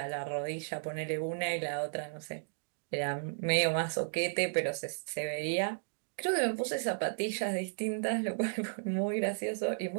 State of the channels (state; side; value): silent; left; digital silence